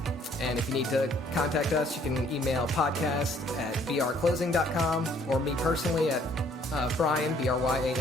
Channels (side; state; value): both; normal; correlation 0.62